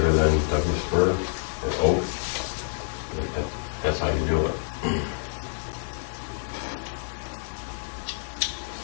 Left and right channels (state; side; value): silent; right; digital silence